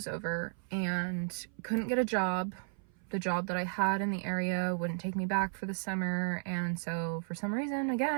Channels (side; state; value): left; silent; 55 dB below the other